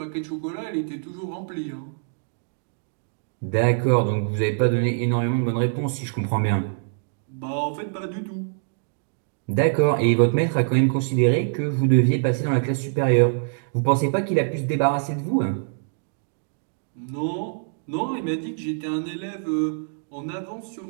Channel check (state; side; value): silent; left; digital silence